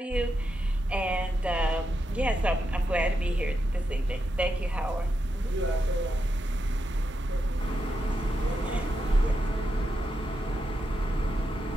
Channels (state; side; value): normal; both; correlation 0.85